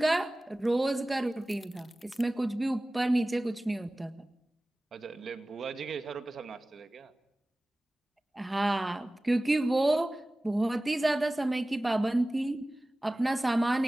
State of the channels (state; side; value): normal; both; correlation 0.98